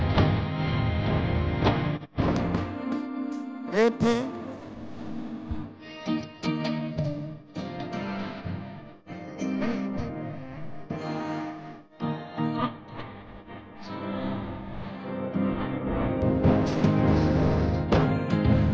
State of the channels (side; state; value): both; identical; correlation 1.00